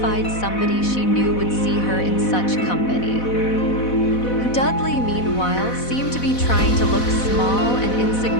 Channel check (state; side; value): late; right; 4.1 ms